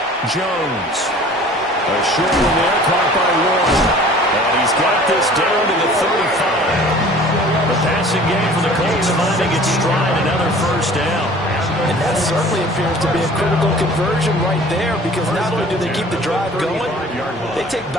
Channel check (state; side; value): normal; both; correlation 0.47